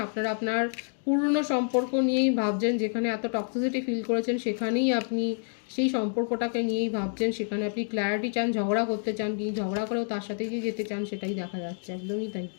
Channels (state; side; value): silent; right; digital silence